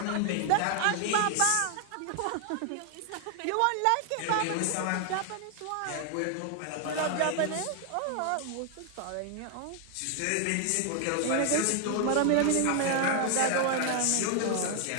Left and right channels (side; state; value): both; different; correlation 0.00